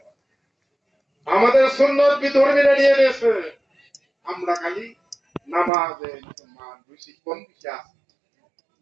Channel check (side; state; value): left; drops out; at 5.7 s